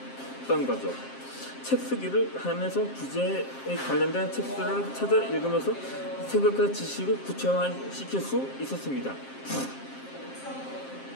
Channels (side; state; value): right; late; 7.5 ms